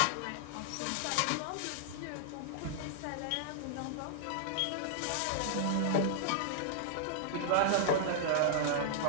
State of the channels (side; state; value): both; different; correlation -0.01